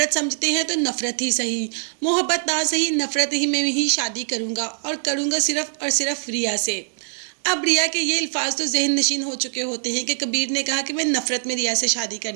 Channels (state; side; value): silent; left; digital silence